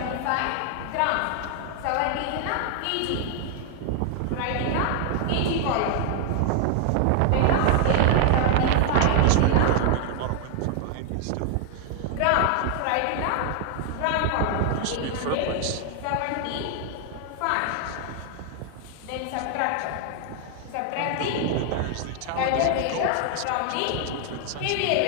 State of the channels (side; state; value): both; different; correlation 0.00